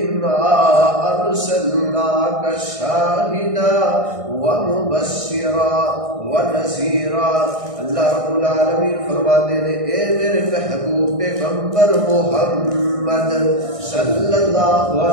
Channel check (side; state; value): left; late; 1.6 ms